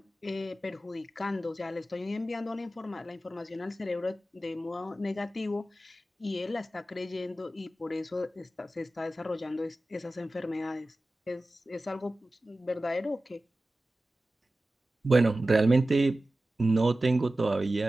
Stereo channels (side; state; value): both; normal; correlation 0.95